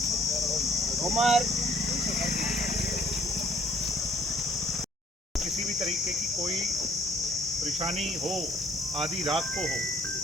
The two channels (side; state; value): both; normal; correlation 0.60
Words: किसी भी तरीके की कोई परेशानी हो, आधी रात को हो,